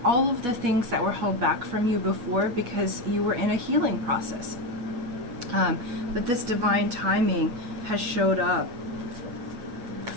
all of the things that were held back from you before because you were in a healing process. But this divine timing has showed up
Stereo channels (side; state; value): left; late; 8.3 ms